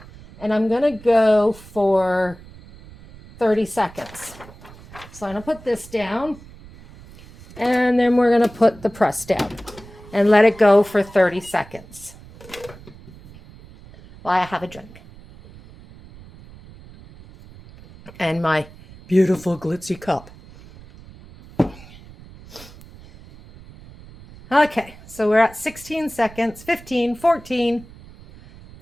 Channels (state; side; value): noise; right; rumble, 20 dB below the sound